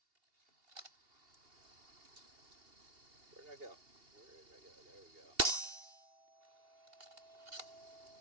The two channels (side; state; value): left; late; 2.8 ms